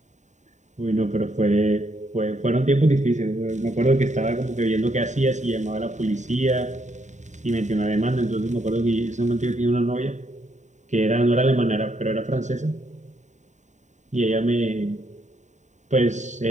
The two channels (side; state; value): left; late; 0.34 ms